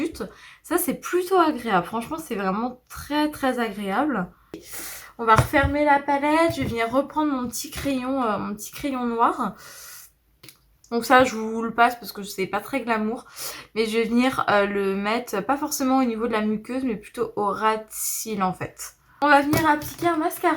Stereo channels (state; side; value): identical; both; correlation 1.00